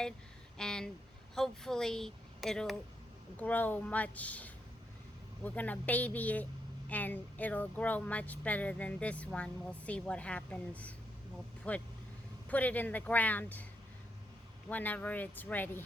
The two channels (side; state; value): both; normal; correlation 0.80